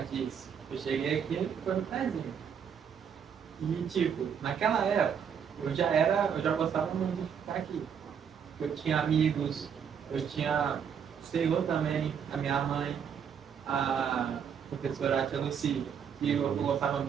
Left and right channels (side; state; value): left; quieter; 7.6 dB